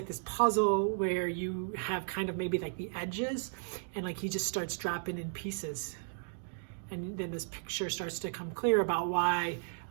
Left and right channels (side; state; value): left; silent; digital silence